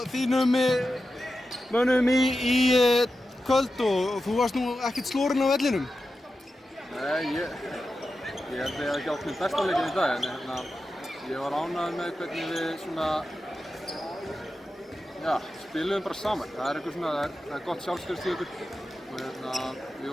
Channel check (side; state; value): both; normal; correlation 0.91